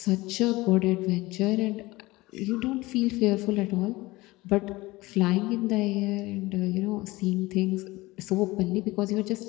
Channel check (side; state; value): right; quieter; 20.5 dB